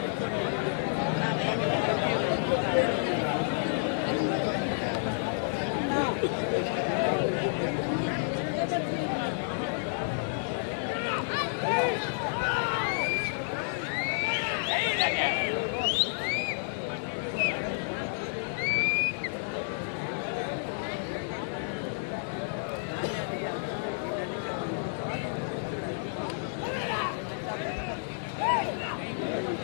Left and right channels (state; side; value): silent; right; digital silence